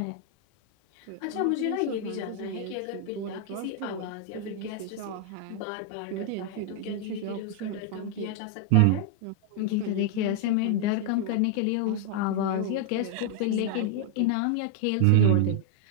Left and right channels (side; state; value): both; different; correlation 0.00